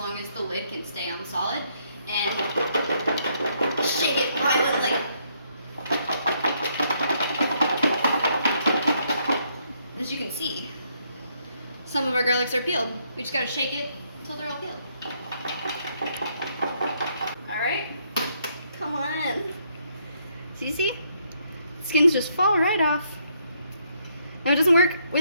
as the lid can stay on solid. And shake it violently. As you can see, some of our garlics are peeled. We just gotta shake it until they're all peeled. Alright, come on. So you see? Skins just fall right off. Now it doesn't work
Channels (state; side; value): inverted; both; correlation -0.72